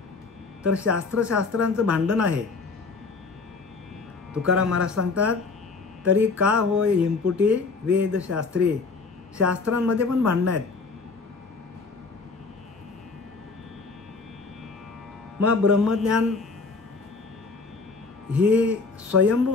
तर शास्त्रांचं भांडण आहे. तुकाराम महाराज सांगतात, तरी का होय हिमपुटी वेदशास्त्री. शास्त्रांमध्ये पण भांडणं आहेत. मग ब्रह्मज्ञान ही स्वयंभू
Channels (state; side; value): quieter; right; 4.2 dB